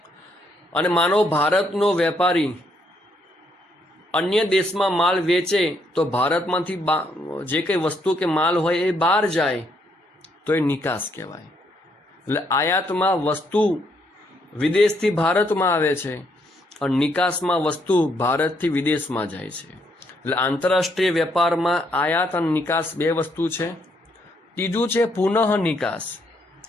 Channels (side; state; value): both; normal; correlation 0.73